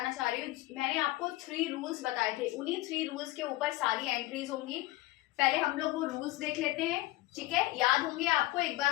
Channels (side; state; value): right; quieter; 18.0 dB